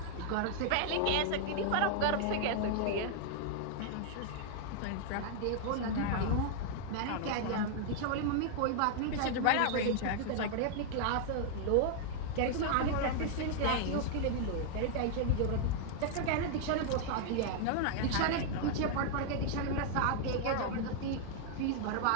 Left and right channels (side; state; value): both; different; correlation -0.01